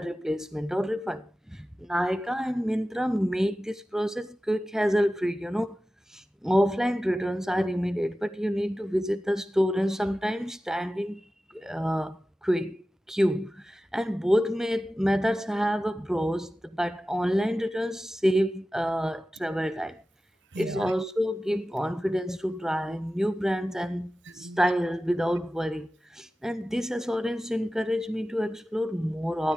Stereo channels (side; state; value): both; normal; correlation 0.95